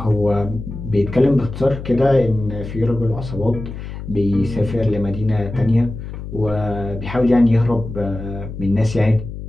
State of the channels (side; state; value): left; noise; hum, 9 dB below the sound